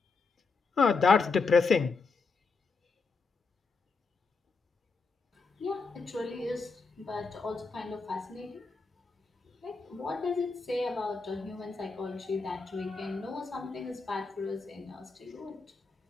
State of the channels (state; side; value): quieter; right; 4.3 dB